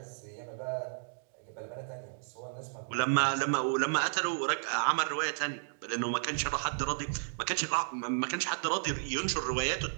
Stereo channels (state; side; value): silent; left; digital silence